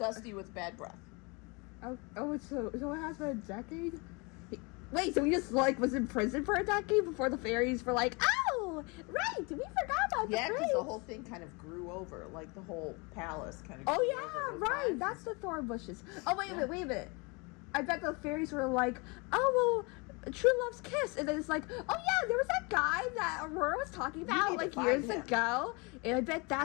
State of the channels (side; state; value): right; quieter; 29.2 dB